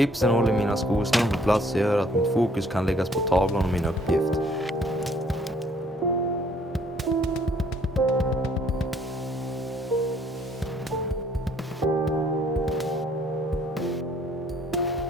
håller mina skosnören på plats och gör att mitt fokus kan läggas på tavlan och min uppgift.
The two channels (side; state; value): both; normal; correlation 0.62